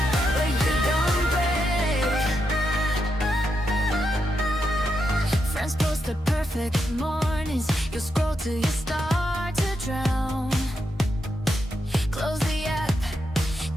but you don't break. Friends post the perfect mornings. You scroll till you start to drown. Close the app,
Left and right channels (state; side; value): normal; both; correlation 0.84